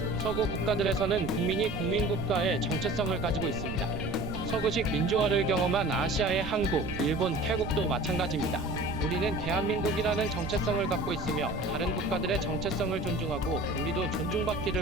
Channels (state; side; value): noise; right; rumble, 8 dB below the sound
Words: 서구 국가들에서는 국민이 국민국가의 정체성을 가지고 있습니다. 서구식 민주화를 경험한 아시아의 한국, 일본, 태국도 마찬가지입니다. 우리는 대한민국이라는 정체성을 갖고 있으며 다른 국가들의 정체성을 존중하고 우리도